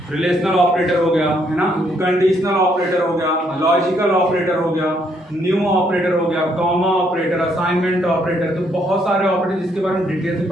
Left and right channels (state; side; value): normal; both; correlation 0.71